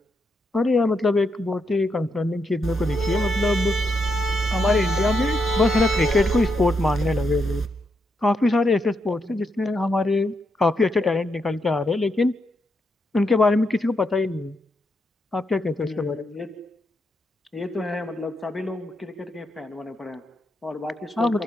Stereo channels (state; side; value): normal; both; correlation 0.81